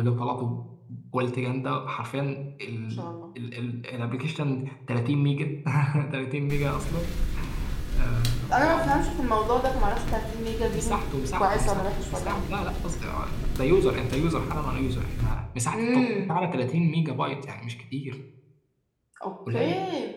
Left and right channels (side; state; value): both; identical; correlation 1.00